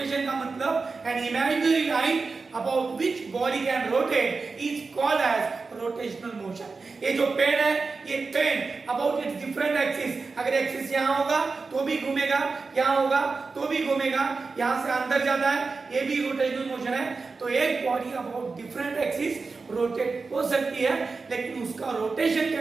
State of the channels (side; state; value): left; quieter; 4.3 dB